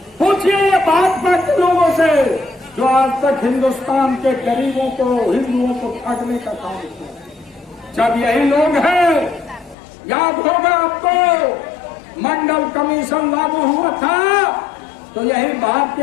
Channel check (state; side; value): drops out; right; at 9.8 s